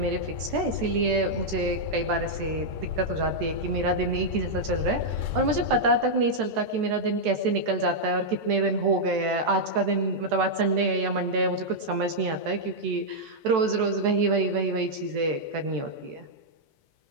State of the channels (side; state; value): left; late; 14 ms